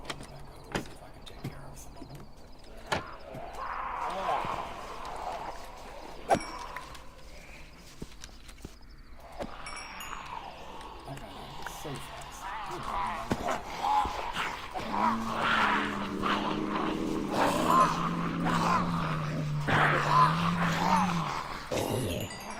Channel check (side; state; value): both; identical; correlation 1.00